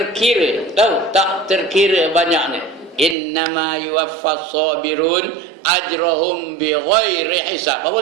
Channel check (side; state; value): left; drops out; at 3.2 s